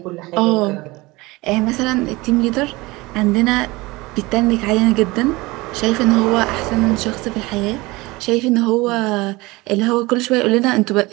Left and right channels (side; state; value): left; quieter; 22.1 dB